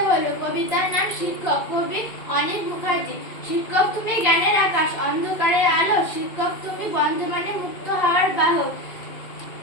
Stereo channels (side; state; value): right; late; 2.3 ms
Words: বলবো। কবিতার নাম শিক্ষক, কবি অনিক মুখার্জি। শিক্ষক তুমি জ্ঞানের আকাশ, অন্ধকারের আলো, শিক্ষক তুমি বন্ধু মানে মুক্ত হওয়ার বাহক,